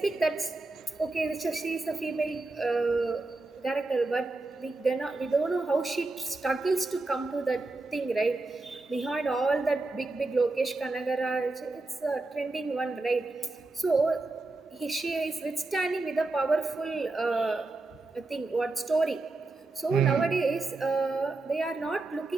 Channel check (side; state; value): left; quieter; 3.3 dB